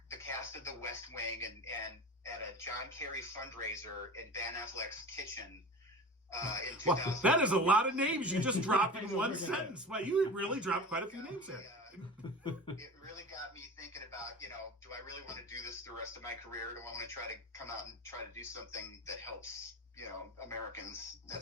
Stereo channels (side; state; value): both; normal; correlation 0.32